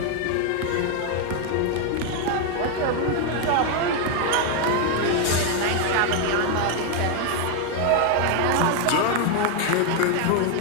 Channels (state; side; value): different; both; correlation 0.01